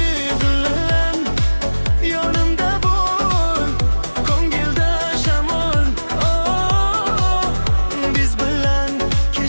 bilan yonimda bo'l, ko'ngilda shamol. Biz bilan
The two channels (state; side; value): inverted; both; correlation -1.00